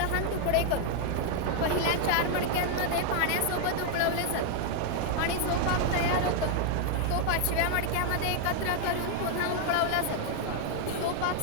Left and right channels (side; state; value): both; different; correlation 0.00